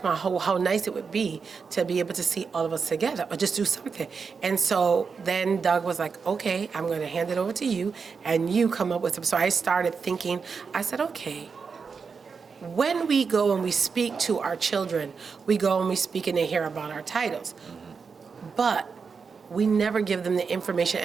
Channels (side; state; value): left; quieter; 5.4 dB